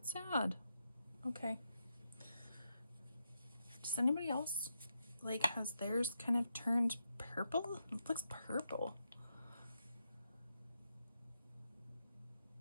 sad. Okay. Does anybody else, like, has theirs kind of turned purple? It looks purple.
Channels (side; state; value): both; inverted; correlation -0.84